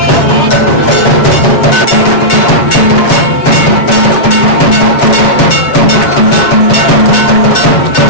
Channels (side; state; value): right; late; 7.6 ms